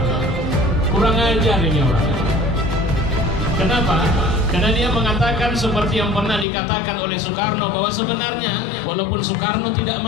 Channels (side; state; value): right; drops out; at 6.5 s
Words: kurang ajar ini orang. Kenapa? Karena dia mengatakan seperti yang pernah dikatakan oleh Soekarno, bahwa sebenarnya walaupun Soekarno tidak